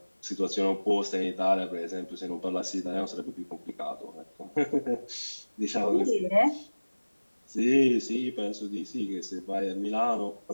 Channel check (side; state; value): both; inverted; correlation -1.00